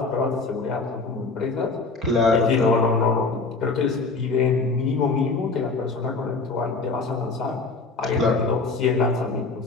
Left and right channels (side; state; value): right; quieter; 3.9 dB